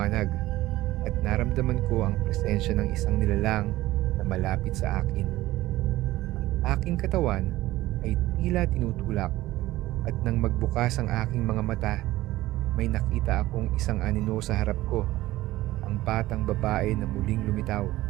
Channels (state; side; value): quieter; left; 16.8 dB